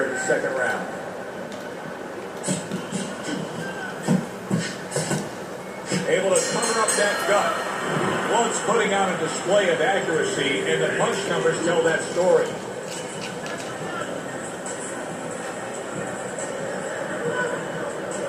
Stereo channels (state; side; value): identical; both; correlation 1.00